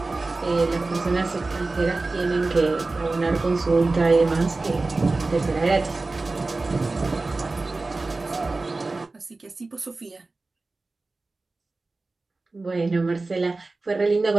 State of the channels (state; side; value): quieter; left; 3.4 dB